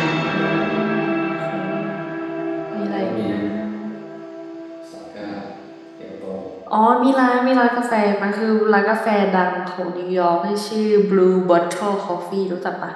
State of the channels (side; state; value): both; identical; correlation 1.00